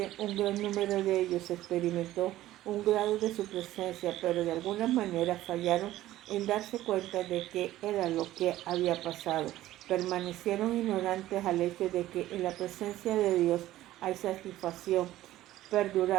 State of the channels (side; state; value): left; quieter; 14.8 dB